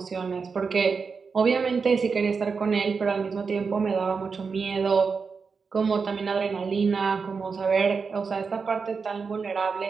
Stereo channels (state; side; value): quieter; left; 5.2 dB